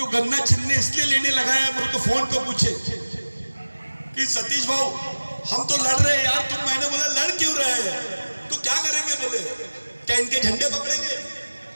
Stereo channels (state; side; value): inverted; both; correlation -1.00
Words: गन्ना चिन्ह इसलिए लेने लगा है, मेरे को फोन पे पूछे कि सतीश भाऊ हम तो लड़ रहे हैं यार, तुम। मैंने बोला लड़ क्यों रहे हैं? तो क्या करेंगे? बोले क्या इनके झंडे पकड़ेंगे?